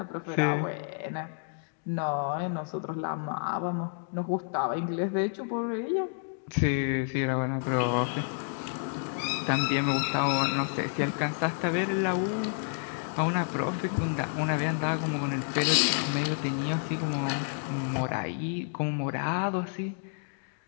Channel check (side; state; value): right; silent; digital silence